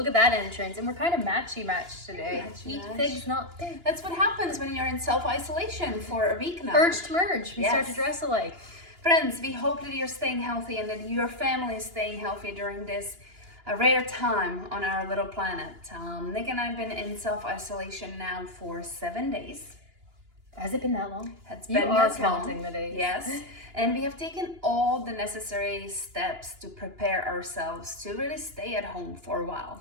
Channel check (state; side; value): late; left; 2.9 ms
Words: at that entrance. And we're kind of matchy today. Eat Matchy-match. figs, not pigs. That's what happens when you're in self-isolation for a week now. Urge to merge. We start to Yes. dress alike. Friends, we hope that you're staying healthy and that your family is staying healthy during this rare time on our little planet. Nick and I have been in self-isolation now for 7 days. Has it been that long? It's You been are this long. counting the days. Yes. And we have taken all the necessary steps to prepare ourselves to really stay at home for a